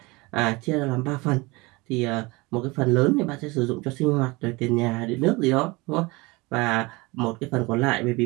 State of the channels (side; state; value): left; quieter; 24.3 dB